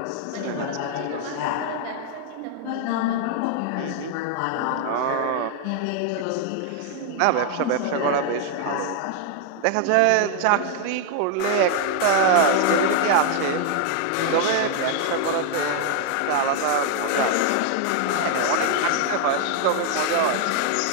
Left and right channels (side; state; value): both; different; correlation 0.00